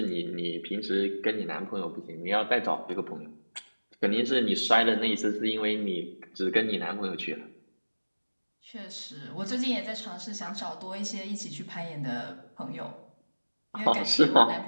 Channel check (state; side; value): inverted; both; correlation -1.00